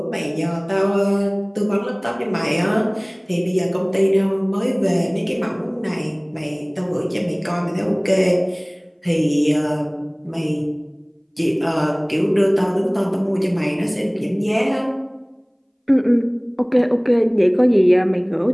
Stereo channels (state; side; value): identical; both; correlation 1.00